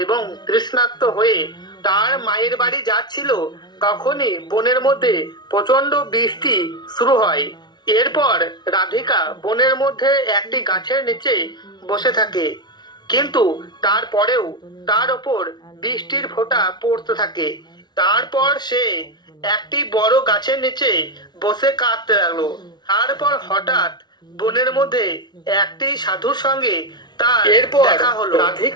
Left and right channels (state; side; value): late; right; 0.20 ms